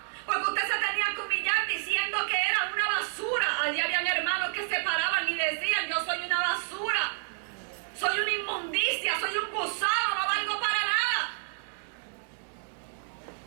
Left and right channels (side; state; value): left; silent; digital silence